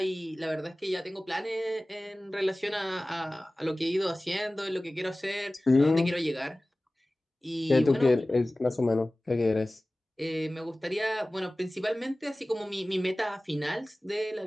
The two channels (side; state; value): both; normal; correlation 0.98